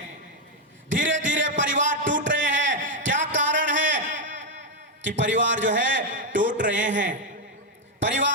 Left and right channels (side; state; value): both; normal; correlation 0.02